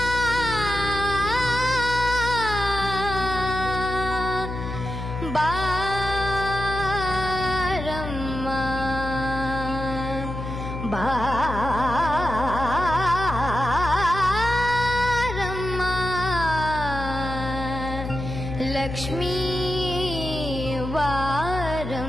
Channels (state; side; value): noise; left; hum, 6 dB below the sound